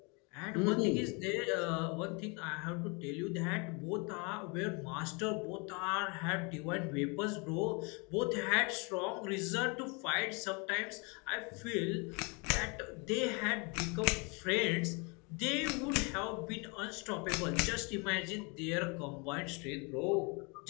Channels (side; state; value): right; quieter; 31.2 dB